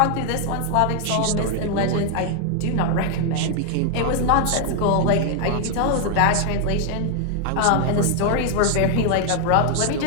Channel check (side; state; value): both; different; correlation 0.00